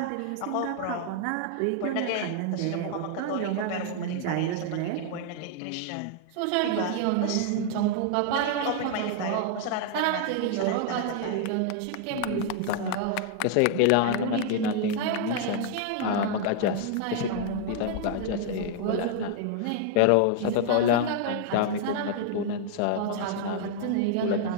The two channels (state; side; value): different; both; correlation 0.00